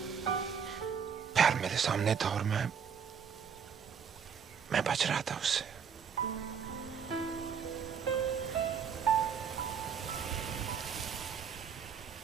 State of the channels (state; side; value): quieter; left; 7.0 dB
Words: प्यार मेरे सामने था और मैं बच रहा था उससे।